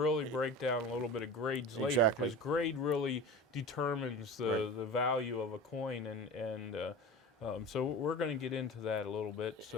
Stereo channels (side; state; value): both; normal; correlation 0.33